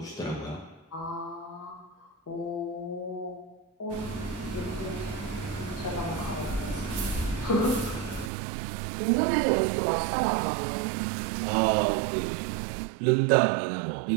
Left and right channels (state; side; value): drops out; left; at 8.3 s